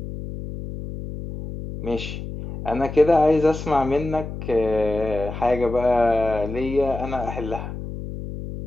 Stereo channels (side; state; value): left; noise; hum, 9 dB below the sound